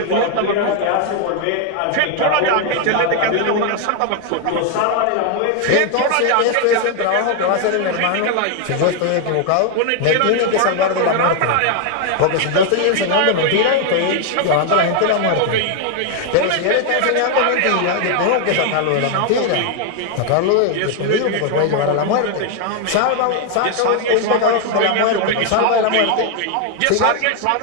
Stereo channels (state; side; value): different; both; correlation 0.00